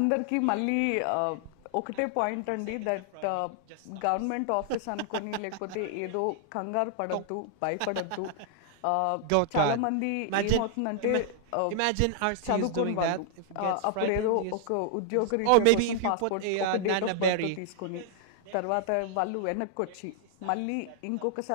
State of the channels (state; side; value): different; both; correlation 0.00